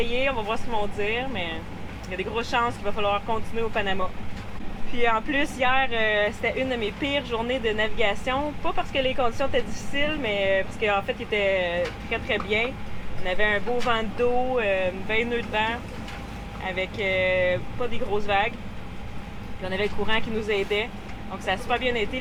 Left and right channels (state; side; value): identical; both; correlation 1.00